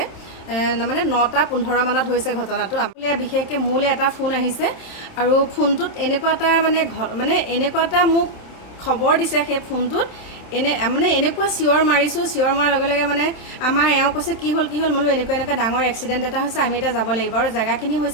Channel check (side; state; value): right; late; 27 ms